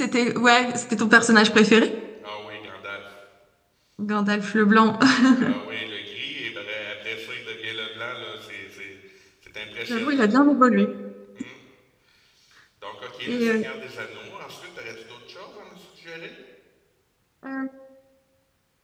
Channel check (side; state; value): both; identical; correlation 1.00